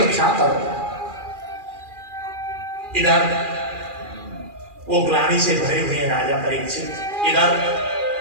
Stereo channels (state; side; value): late; left; 2.4 ms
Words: करो। इधर वो ग्लानि से भरे हुए राजा परीक्षित, इधर